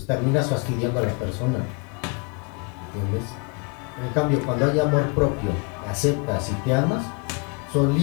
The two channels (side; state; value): right; quieter; 32.7 dB